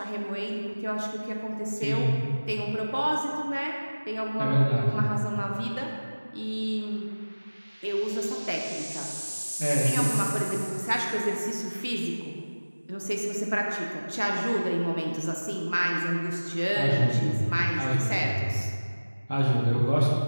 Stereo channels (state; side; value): inverted; both; correlation -1.00